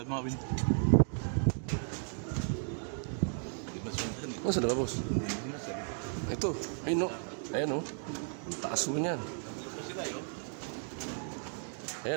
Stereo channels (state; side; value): silent; left; 55 dB below the other